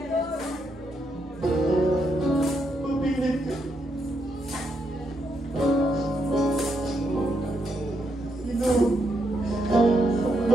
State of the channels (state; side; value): normal; both; correlation 0.79